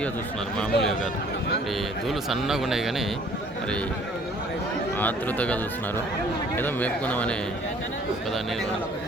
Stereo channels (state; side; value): normal; both; correlation 0.57